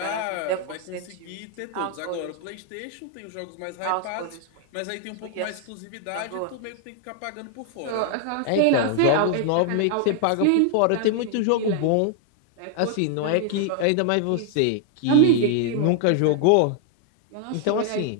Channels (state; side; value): different; both; correlation 0.00